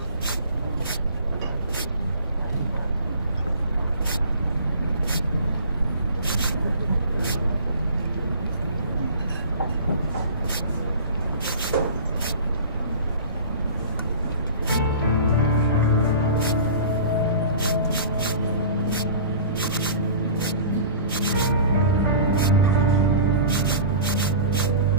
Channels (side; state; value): both; inverted; correlation -0.41